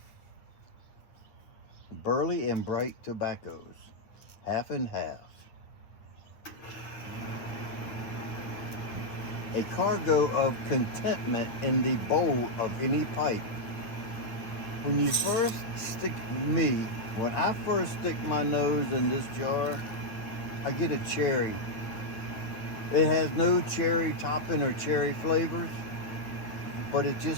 burley and bright tobaccos, half and half. A cargo of contentment in the bowl of any pipe. When I first stick my nose in this jar, I get a cherry. It has no cherry topping or cherry flavors, but it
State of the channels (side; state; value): right; late; 9.1 ms